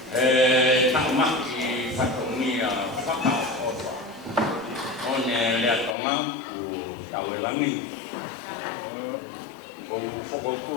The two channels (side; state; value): right; drops out; at 6.0 s